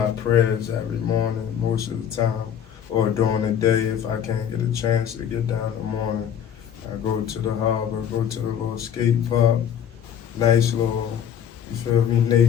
prayers every morning most of the time, or during the day if I can't get a chance to get down in the morning. I go to the harbor, go to the little skate park, nice little, you feel me,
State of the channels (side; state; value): right; quieter; 9.0 dB